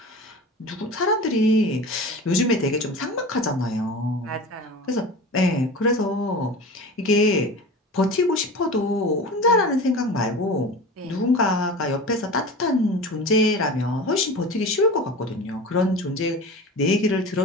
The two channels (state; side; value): normal; both; correlation 0.34